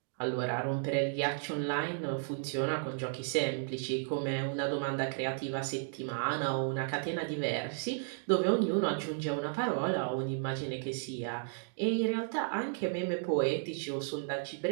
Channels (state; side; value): silent; left; digital silence